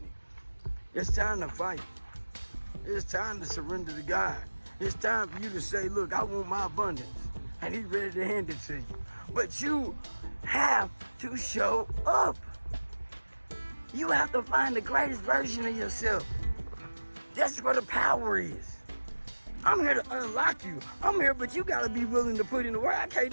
It's time to fight. It's time to surrender to God. It's time for you to say, look, I want my abundance. And he's ready to hand it to you. But you have to show up. You have to find the greatest version of yourself. That's where the power is. I'm here to unlock you. I'm here, but you gotta be willing to put in the work. I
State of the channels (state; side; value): inverted; both; correlation -1.00